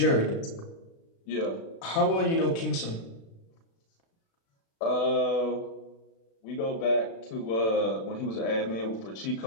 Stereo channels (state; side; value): late; right; 36 ms